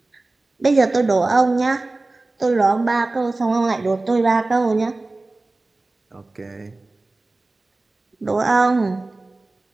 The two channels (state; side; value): quieter; left; 3.1 dB